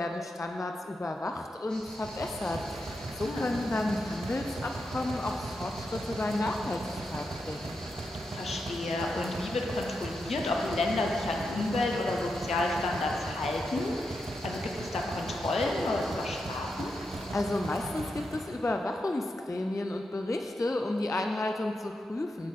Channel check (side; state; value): both; normal; correlation 0.86